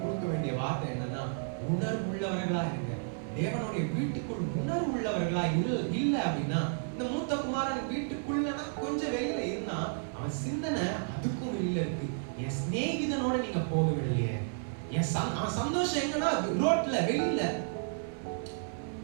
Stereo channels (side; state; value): left; silent; 56 dB below the other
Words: வேண்டிய வார்த்தை என்னன்னா, உணர்வு உள்ளவர்களா இருங்க. தேவனுடைய வீட்டுக்குள் உணர்வு உள்ளவர்களா இல்ல அப்படின்னா, இந்த மூத்த குமாரன் வீட்டுக்குள்ளனா கொஞ்சம் வெளியில இருந்தா அவன் சிந்தனை அதுக்கும் வெளியில இருக்கு. என் சிநேகிதனோட நீங்க போக விடலையே, அவன் சந்தோஷம் எங்கன்னா ரோட்ல வெளியில.